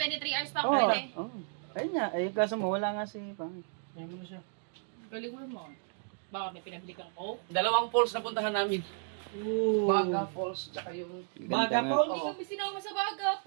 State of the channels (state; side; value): silent; left; 56 dB below the other